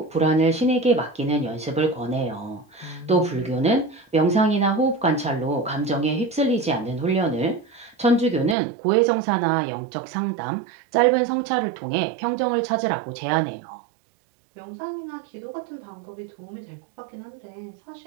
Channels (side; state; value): left; drops out; at 8.6 s